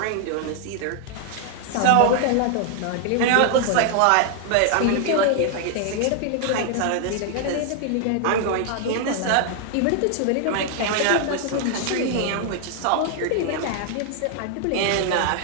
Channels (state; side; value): different; both; correlation 0.00